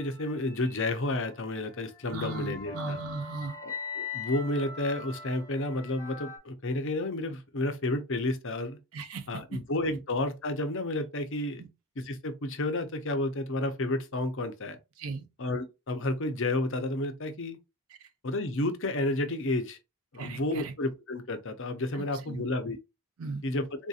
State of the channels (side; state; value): both; normal; correlation 0.26